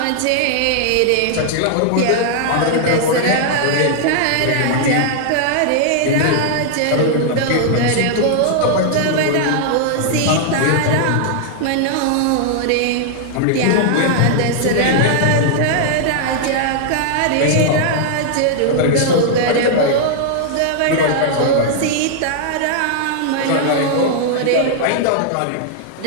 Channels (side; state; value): both; different; correlation -0.01